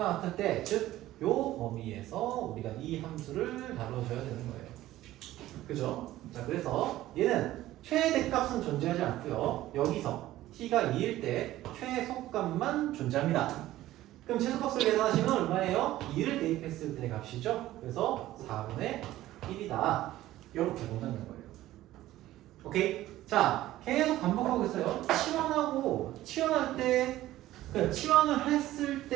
같을 때, 즉 요 범위에서 우리가 이 함수를 다루어줘야 되는 거예요. 그죠? 자, 그래서 얘는 최대값은 존재하지 않고요. 여기서 t가 2일 때 최소값만 존재합니다. 그럼 최소값을 계산하시면 얼마예요? 2를 대입했을 때 값이죠. 그래서 4분의 1이다. 이렇게 본다는 거예요. 오케이? 자, 계속 반복하고 있어요. 치환할 때, 치환을 했을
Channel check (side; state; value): left; quieter; 15.1 dB